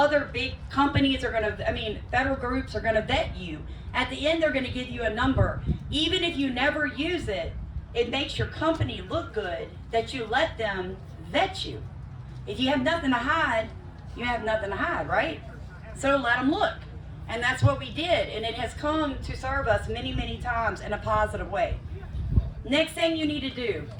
big companies federal groups are going to vet you. At the end, they're going to give you a number. Even if you never use it, it makes your company look good that you let them vet you. If you have nothing to hide, you have nothing to hide, right? So let them look. And that's what we did. And it has come to serve us many, many times in a positive way. Next thing you need to do.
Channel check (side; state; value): both; identical; correlation 1.00